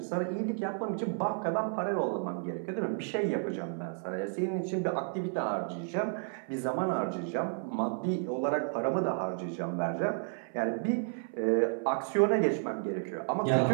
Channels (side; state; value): left; silent; 56 dB below the other